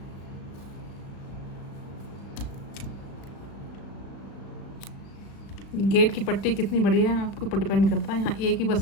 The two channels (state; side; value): late; right; 35 ms